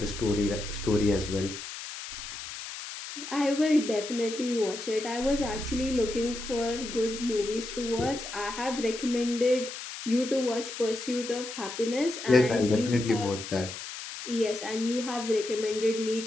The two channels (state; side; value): noise; left; hiss, 9 dB below the sound